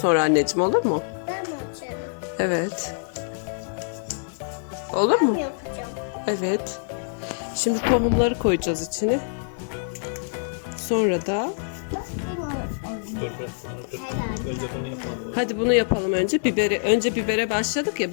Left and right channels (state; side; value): silent; right; digital silence